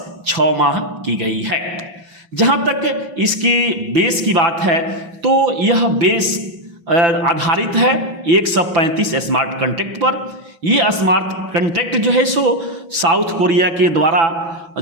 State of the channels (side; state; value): left; late; 5.9 ms